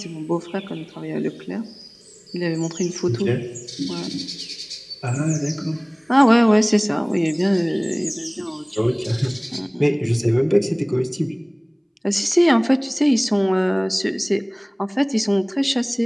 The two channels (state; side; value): identical; both; correlation 1.00